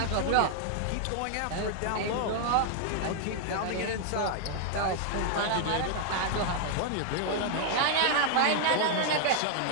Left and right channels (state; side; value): different; both; correlation 0.00